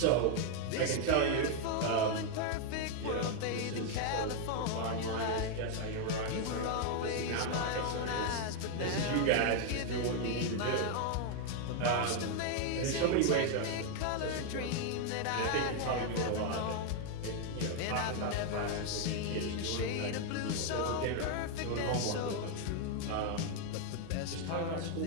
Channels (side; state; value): both; different; correlation 0.00